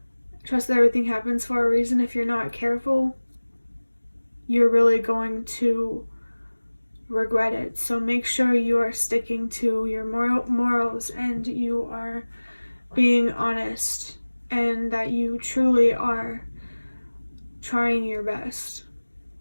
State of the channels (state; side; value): inverted; both; correlation -1.00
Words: Trust that everything happens for a reason. If you're not careful, you're really going to regret it. So make sure you are sticking to your morals, and you are being honest, and that you truly are trying your best.